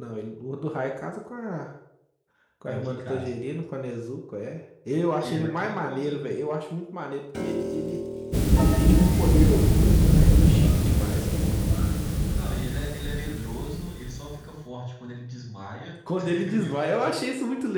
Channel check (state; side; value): identical; both; correlation 1.00